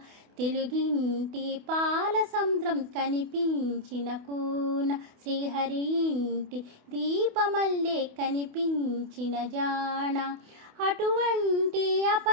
తెలుగింటి పాల సంద్రం కనిపించిన కూన శ్రీహరి ఇంటి దీపమల్లె కనిపించిన జాణ అటువంటి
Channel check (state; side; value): late; left; 28 ms